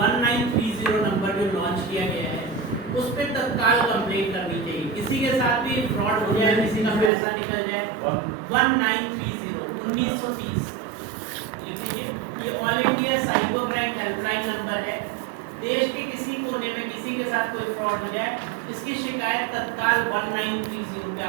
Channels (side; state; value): left; drops out; at 7.1 s